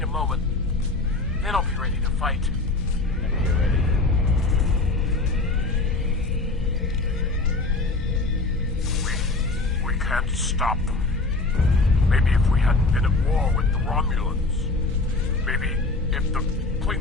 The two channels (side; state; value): right; quieter; 3.3 dB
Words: a moment. Then I'll be ready to fight. Whenever you're ready. can't stop them. Maybe if we hadn't been at war with the Romulans. Maybe if the